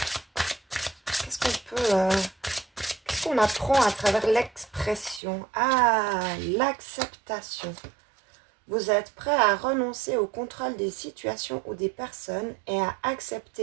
Qu'est-ce qu'on apprend à travers l'expression? Ah, l'acceptation. Vous êtes prêt à renoncer au contrôle des situations ou des personnes et à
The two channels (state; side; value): drops out; left; at 5.2 s